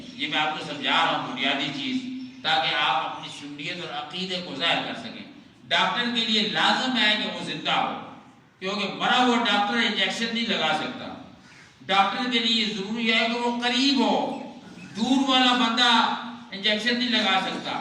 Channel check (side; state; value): both; identical; correlation 1.00